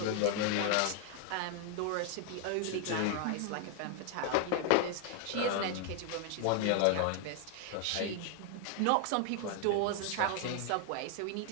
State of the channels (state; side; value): different; both; correlation 0.00